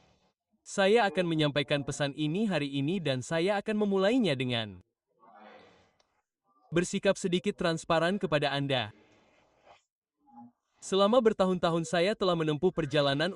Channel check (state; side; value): identical; both; correlation 1.00